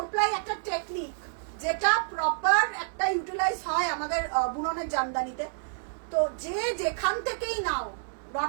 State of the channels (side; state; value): left; silent; 59 dB below the other